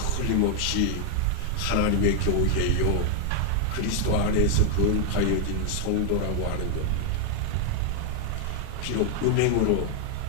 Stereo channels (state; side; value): different; both; correlation 0.00